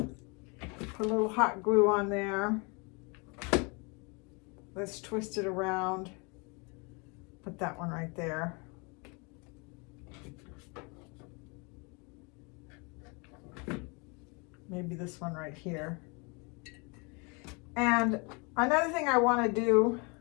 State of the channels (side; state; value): right; quieter; 31.3 dB